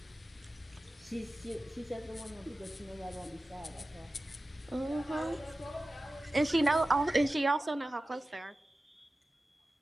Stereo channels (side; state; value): both; normal; correlation 0.95